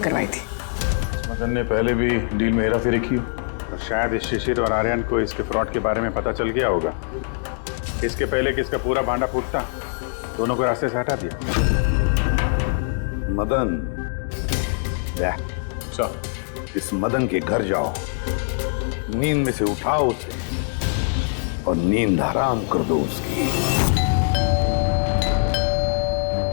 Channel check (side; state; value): right; silent; digital silence